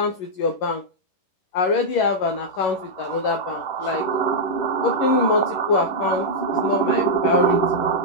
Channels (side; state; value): right; late; 11 ms